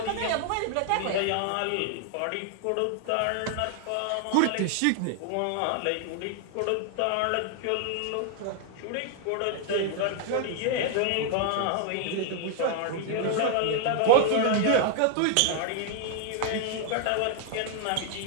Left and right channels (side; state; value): both; different; correlation 0.00